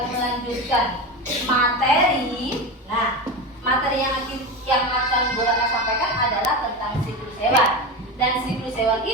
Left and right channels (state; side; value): normal; both; correlation 0.22